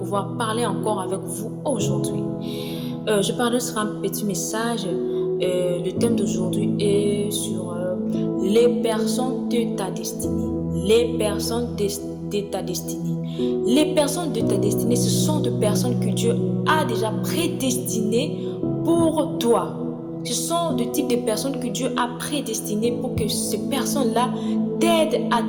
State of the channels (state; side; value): identical; both; correlation 1.00